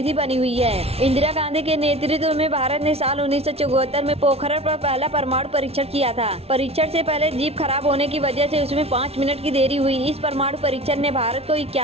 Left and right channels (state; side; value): late; left; 0.30 ms